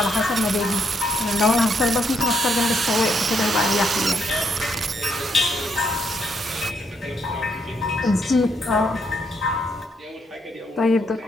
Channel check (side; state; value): both; normal; correlation 0.75